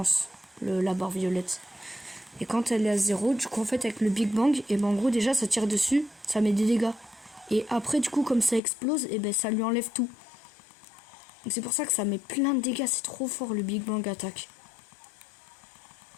la barre violette. Et quand elle est à 0, du coup en fait avec le Big Bang, et ben en gros déjà ça tire dessus, ça met des dégâts. Et après du coup comme ça explose, et ben ça lui enlève tout. Donc c'est pour ça que ça met plein de dégâts, c'est trop fort le Big Bang attaque.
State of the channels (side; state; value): right; drops out; at 8.6 s